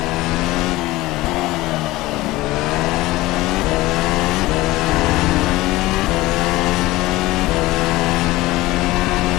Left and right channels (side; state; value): right; quieter; 18.4 dB